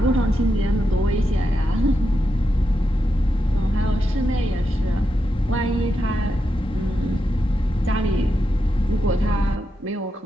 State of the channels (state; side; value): normal; both; correlation 0.86